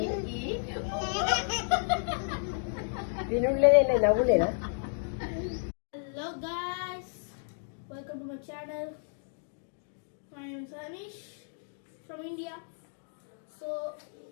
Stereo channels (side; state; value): right; silent; digital silence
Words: వినులేదే నవ్వులేదా? Hello guys, welcome to my channel. My name is Anish from India. So